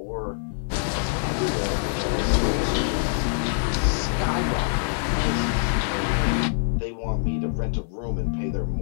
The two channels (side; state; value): right; silent; 62 dB below the other